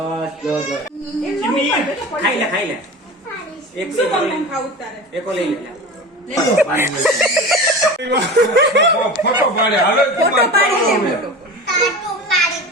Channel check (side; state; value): both; normal; correlation 0.32